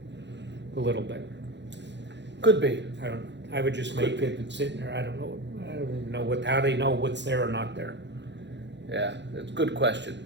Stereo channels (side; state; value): left; late; 0.52 ms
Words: a little bit. Could be. I would just make it sitting there. I don't know. I don't even know how they know what's there or not there. Yeah, it's a good question,